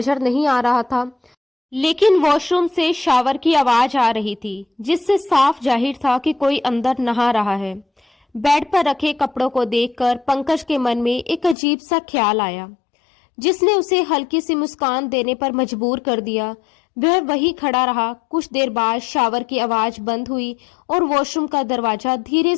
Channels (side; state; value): right; drops out; at 11.6 s